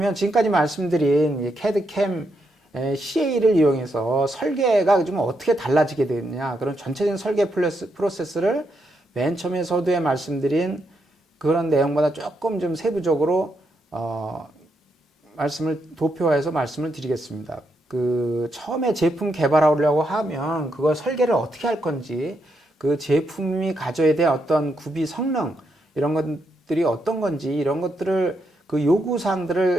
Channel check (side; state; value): both; normal; correlation 0.80